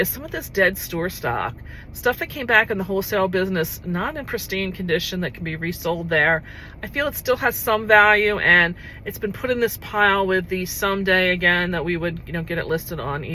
some of this dead store stock. Stuff that came back in the wholesale business, not in pristine condition, that can be resold there. I feel it still has some value, and it's been put in this pile with the someday again that we would, you know, get it listed on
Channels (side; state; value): both; identical; correlation 1.00